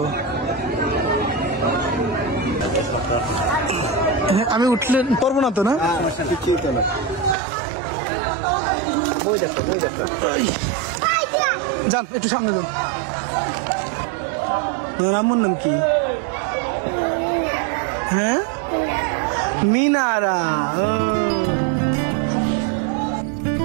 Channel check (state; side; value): drops out; left; at 7.4 s